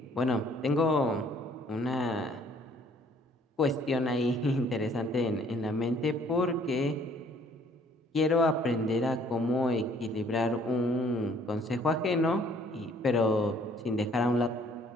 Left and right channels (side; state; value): both; normal; correlation 0.59